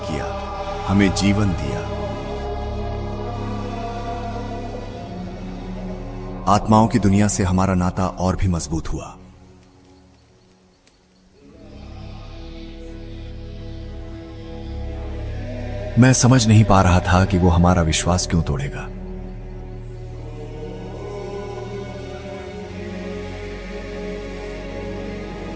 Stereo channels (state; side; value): identical; both; correlation 1.00